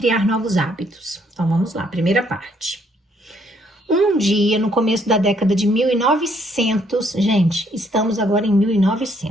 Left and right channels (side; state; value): both; normal; correlation 0.68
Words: Novos Hábitos. Então vamos lá, primeira parte. Um dia, no começo da década de 1900, gente, estamos agora em